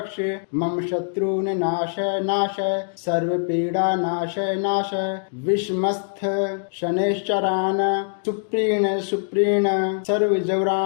मम शत्रुन नाश नाश सर्व पीड़ा नाश नाश विषमस्थ शनैश्चरान सुप्रीण सुप्रीण सर्व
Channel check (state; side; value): silent; right; digital silence